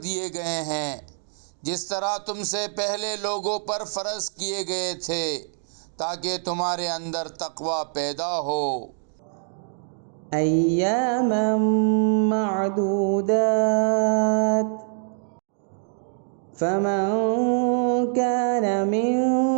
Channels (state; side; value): silent; left; 62 dB below the other